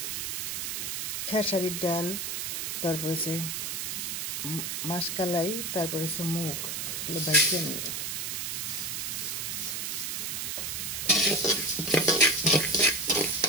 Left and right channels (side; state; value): right; noise; hiss, 2 dB below the sound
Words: খেসারির ডাল, তারপরে মাসকালাই, তারপরে মুগ, এগুলো ভাইজা নিয়ে